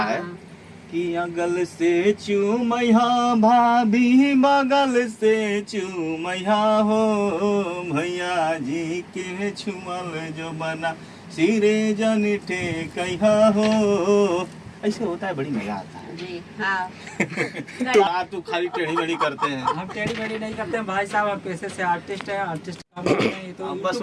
है कि अगल से चूमैया भाभी, बगल से चूमैया हो, भैया जी के छुअल जो बना सिरे जनिठे कहिया हो। ऐसे होता है, बड़ी मजा आता है। जी हाँ। तो आप तो खाली टेढ़ी मेढ़ी करते हैं। हम टेढ़ी मेढ़ी नहीं करते हैं भाई साहब, हम पैसे से आर्टिस्ट हैं। आर्टिस्ट तो बस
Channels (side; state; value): both; identical; correlation 1.00